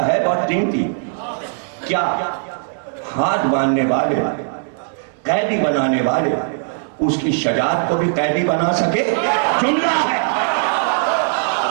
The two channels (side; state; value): left; silent; 67 dB below the other